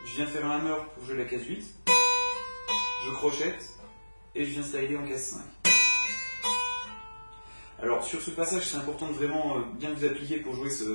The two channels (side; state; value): both; inverted; correlation -1.00